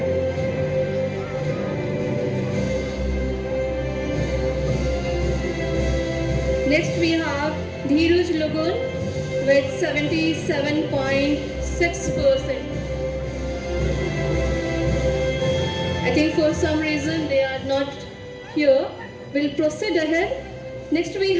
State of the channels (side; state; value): both; identical; correlation 1.00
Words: Next we have Dheeraj Lugun with 77.6%. I think for some reason they are not here. We'll proceed ahead. Next we